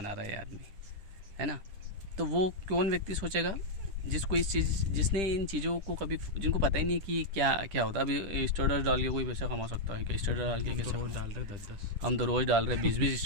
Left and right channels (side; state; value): left; late; 10 ms